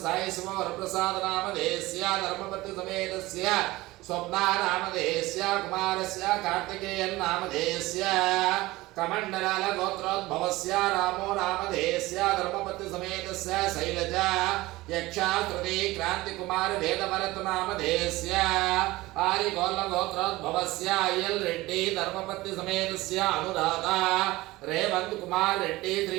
సాయి సుమవరప్రసాద నామధేయస్య ధర్మపతి సమేతస్య స్వప్నా నామధేయస్య కుమారస్య కార్తికేయన్ నామధేయస్య కమండలాల గోత్రోద్భవస్య రామో నామధేయస్య ధర్మపతి సమేతస్య శైలజ యక్షాశ్రుతి క్రాంతి కుమార వేదభరత నామధేయస్య ఆరిగోల్ల గోత్రోద్భవస్య అయ్యల్ రెడ్డి ధర్మపతి సమేతస్య అనురాధ రేవంత్ కుమార్ రెడ్డి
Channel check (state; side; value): quieter; left; 19.3 dB